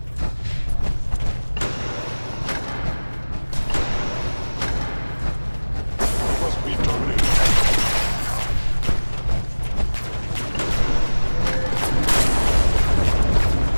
Must be terminated.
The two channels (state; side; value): inverted; both; correlation -1.00